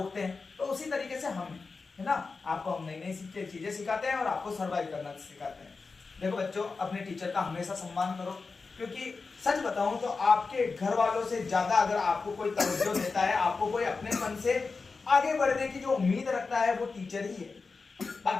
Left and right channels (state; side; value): quieter; right; 4.4 dB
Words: हैं। तो उसी तरीके से हम है ना। आपको हम नई नई चीजें सिखाते हैं और आपको सर्वाइव करना सिखाते हैं। देखो बच्चों, अपने टीचर का हमेशा सम्मान करो, क्योंकि सच बताऊं तो आपके घर वालों से ज्यादा अगर आपको कोई तवज्जो देता है, आपको कोई अपने मन से आगे बढ़ने की जो उम्मीद रखता है, वो टीचर ही है।